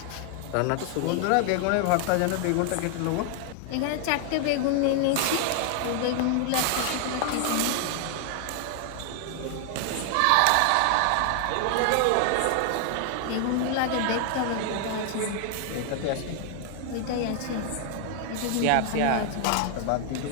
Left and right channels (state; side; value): different; both; correlation 0.00